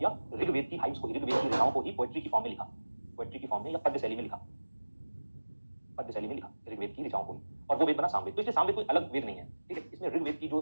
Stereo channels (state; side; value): inverted; both; correlation -1.00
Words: ऋग्वेद की हाइम्स को, ऋग्वेद की रचनाओं को ही पोएट्री की फॉर्म में लिखा, पोएट्री की फॉर्म में या पद्य शैली में लिखा, पद्य शैली में लिखा ऋग्वेद की रचनाओं को ही, और वो वेद बना सामवेद। तो इसलिए सामवेद कोई अलग वेद नहीं है, ठीक है, इसमें ऋग्वेद की